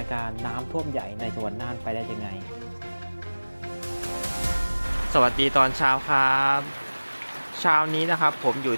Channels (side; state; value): both; inverted; correlation -1.00